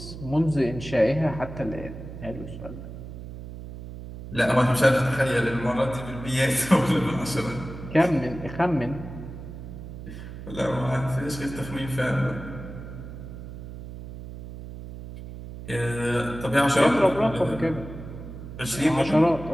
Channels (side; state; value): right; noise; hum, 11 dB below the sound